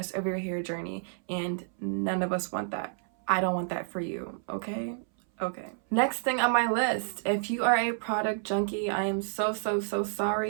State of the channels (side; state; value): left; silent; 58 dB below the other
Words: of your hair journey, and none of us want that. I don't want that for you, okay? Okay. Next thing on my list, if you are a product junkie, I am so